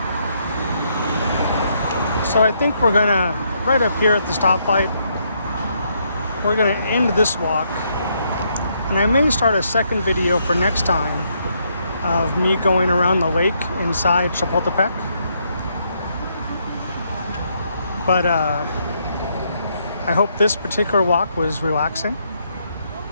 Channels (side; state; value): both; inverted; correlation -0.75